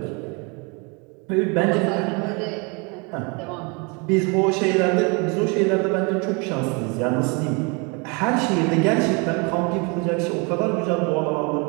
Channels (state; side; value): quieter; left; 31.3 dB